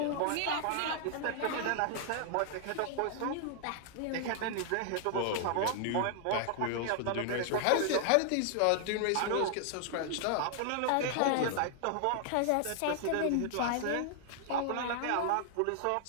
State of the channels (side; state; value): both; different; correlation 0.00